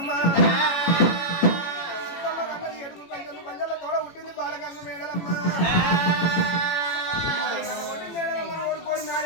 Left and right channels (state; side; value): late; right; 18 ms